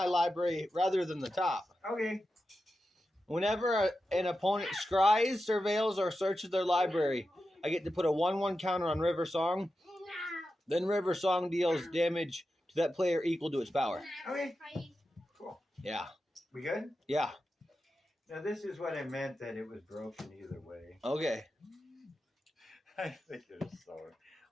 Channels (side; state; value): both; normal; correlation 0.91